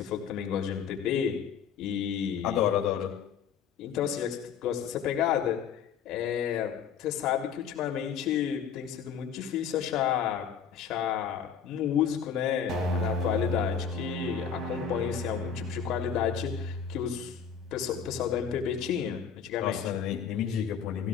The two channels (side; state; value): right; quieter; 7.4 dB